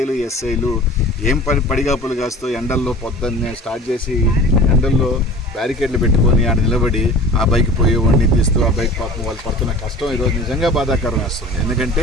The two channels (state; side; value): normal; both; correlation 0.41